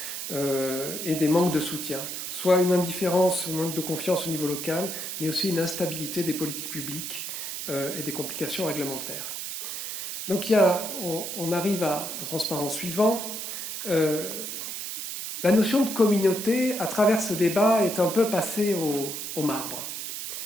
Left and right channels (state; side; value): noise; right; hiss, 6 dB below the sound